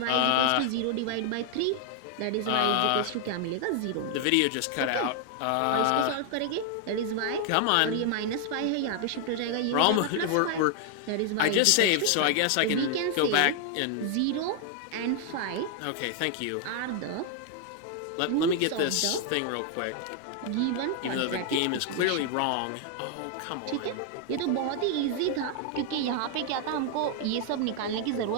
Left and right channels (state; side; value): different; both; correlation 0.00